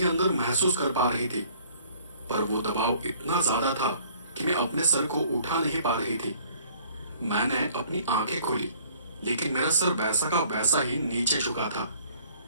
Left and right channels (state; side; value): inverted; both; correlation -0.56